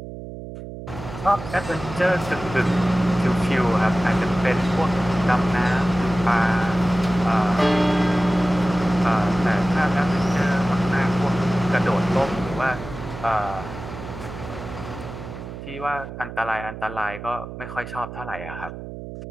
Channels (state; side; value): noise; right; hum, 11 dB below the sound